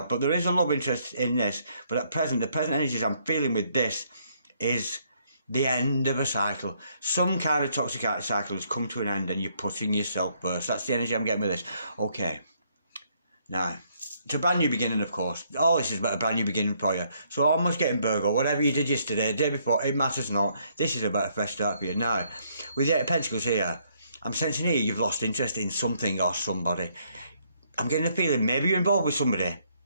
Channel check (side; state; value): both; inverted; correlation -0.70